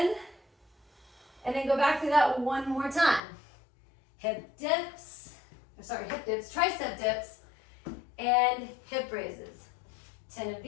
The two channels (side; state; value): right; drops out; at 3.2 s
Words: and then go back through that one more time. Hip dips, tricep dips, and hip raises. 10 of